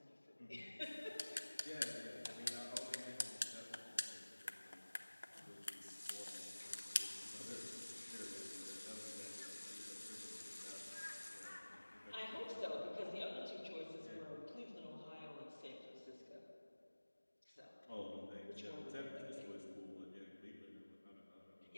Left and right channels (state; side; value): inverted; both; correlation -1.00